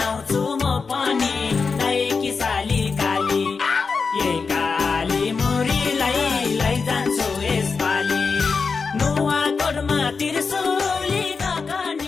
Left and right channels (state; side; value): quieter; right; 4.9 dB